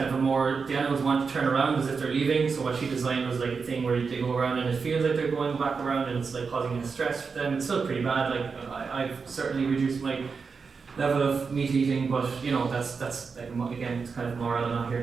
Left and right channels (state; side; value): quieter; left; 5.2 dB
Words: of the animals want to turn around as if they're leaving, so what she designed was like a thing where they go around and it feels like they're going back around and it's like causing stress for them. It's still pretty bad, like I've certainly reduced my level of meat eating, but you know, that's like, again, it's kind of moral. I'm not